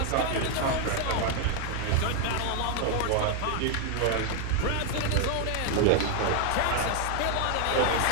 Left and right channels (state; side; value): different; both; correlation 0.00